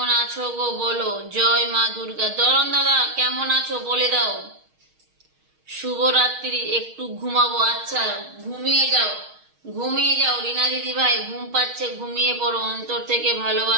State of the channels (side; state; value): left; late; 6.4 ms